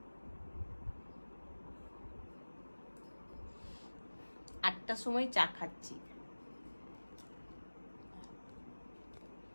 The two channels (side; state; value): both; inverted; correlation -1.00